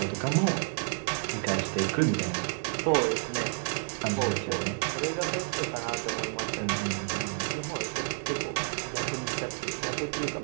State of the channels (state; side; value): silent; left; digital silence